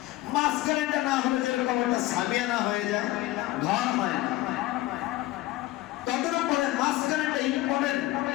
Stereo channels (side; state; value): right; quieter; 17.0 dB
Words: মাঝখানেটা না হলে যেরকম একটা সামিয়ানা হয়ে যায়, ঘর হয় না। তাদের উপরে মাঝখানেটা ইম্পর্টেন্ট,